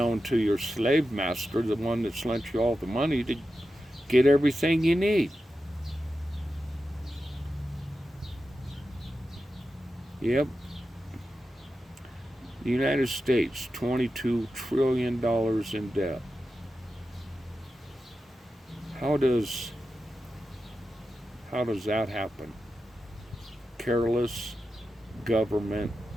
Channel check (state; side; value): normal; both; correlation 0.91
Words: to your slave master, the one that's lent you all the money to get everything you need? Yep. The United States, $22 trillion in debt. How does that happen? Careless government